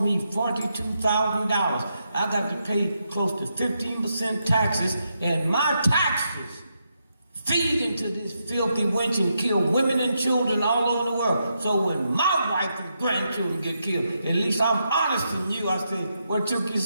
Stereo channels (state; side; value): inverted; both; correlation -0.82